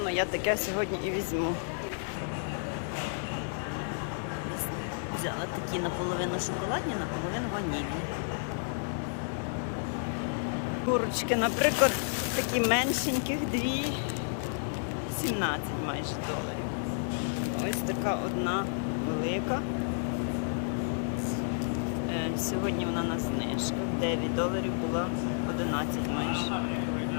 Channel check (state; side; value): silent; right; digital silence